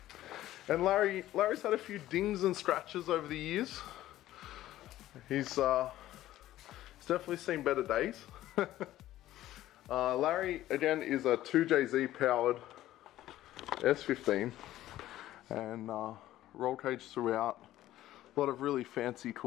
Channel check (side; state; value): right; quieter; 14.3 dB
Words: And Larry's had a few dings and scratches over the years. He's definitely seen better days. Larry again is a 2JZ powered S15, and roll cage throughout. A lot of really fancy